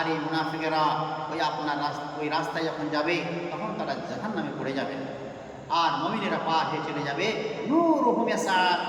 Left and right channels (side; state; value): both; identical; correlation 1.00